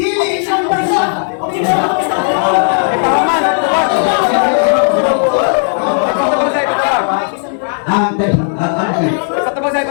isang person. Ang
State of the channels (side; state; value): right; silent; 60 dB below the other